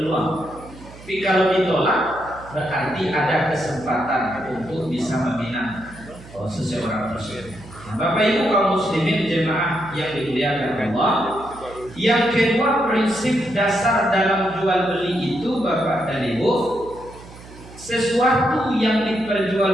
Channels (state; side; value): noise; right; hum, 19 dB below the sound